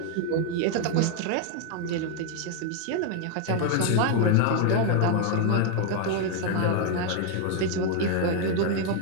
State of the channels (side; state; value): both; different; correlation 0.00